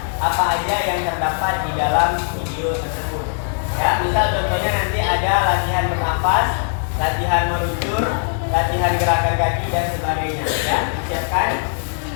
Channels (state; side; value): silent; right; 66 dB below the other